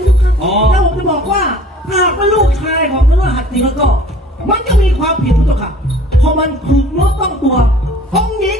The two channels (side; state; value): both; normal; correlation 0.50